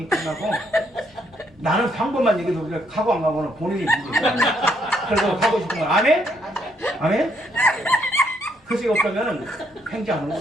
끝나고 나는 방법만 얘기해도 그래 가고 안 가고는 본인이 문제야. 그래서 가고 싶은 건 아멘? 아멘? 그것이 없다면 행지하는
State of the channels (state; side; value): normal; both; correlation 0.73